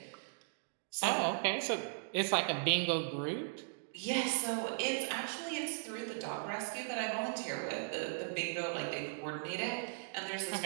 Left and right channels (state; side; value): silent; left; digital silence